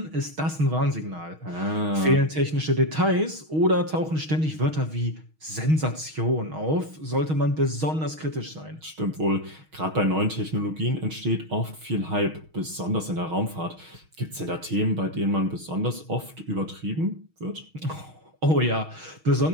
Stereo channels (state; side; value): late; left; 6.4 ms